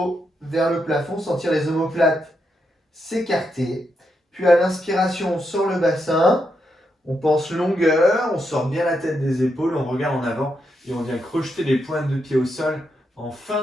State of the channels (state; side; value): normal; both; correlation 0.82